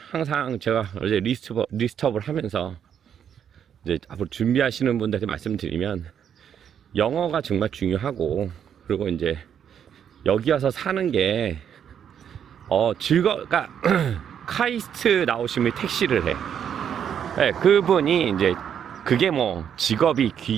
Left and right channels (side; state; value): left; quieter; 8.6 dB